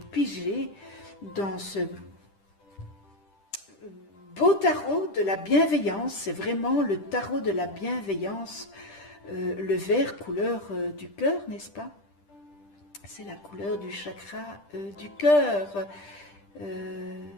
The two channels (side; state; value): right; late; 10 ms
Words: dans ce beau tarot de la bienveillance. C'est vraiment le tarot de la bienveillance, le vert couleur du cœur, n'est-ce pas? C'est la couleur du chakra du cœur.